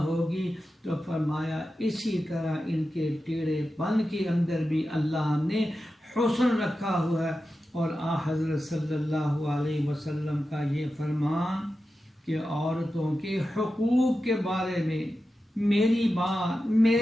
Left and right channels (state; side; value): normal; both; correlation 0.92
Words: ہوگی۔ تو فرمایا اسی طرح ان کے ٹیڑھے پن کے اندر بھی اللہ نے حسن رکھا ہوا ہے۔ اور حضرت صلی اللہ علیہ وسلم کا یہ فرمان کہ عورتوں کے حقوق کے بارے میں میری بات،